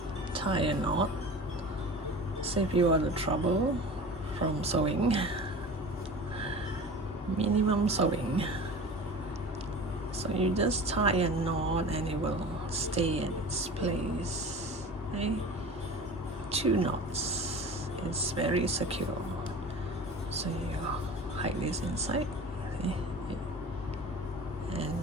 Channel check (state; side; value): normal; both; correlation 0.36